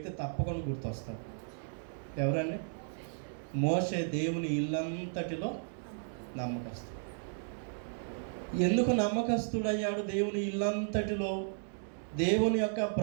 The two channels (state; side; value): silent; left; digital silence